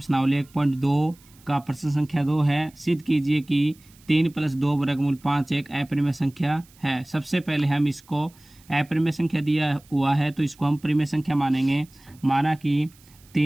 1.2 का प्रश्न संख्या 2 है। सिद्ध कीजिए कि 3 + 2 वर्गमूल 5 एक अपरिमेय संख्या है। सबसे पहले हम इसको अपरिमेय संख्या दिया हुआ है तो इसको हम परिमेय संख्या मानेंगे। माना कि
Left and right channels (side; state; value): right; noise; hiss, 28 dB below the sound